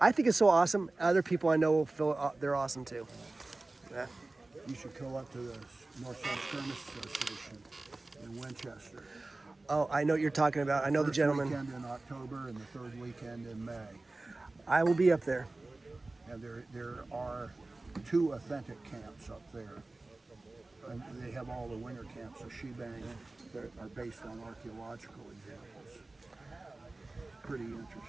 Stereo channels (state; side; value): quieter; left; 3.1 dB